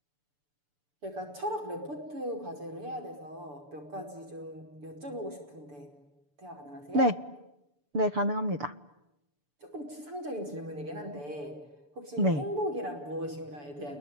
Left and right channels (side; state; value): left; late; 6.9 ms